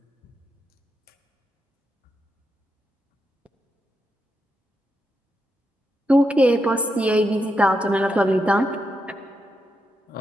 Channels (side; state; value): both; normal; correlation 0.84